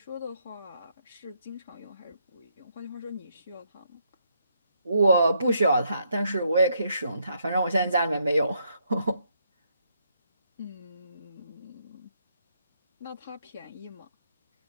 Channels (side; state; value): both; inverted; correlation -0.74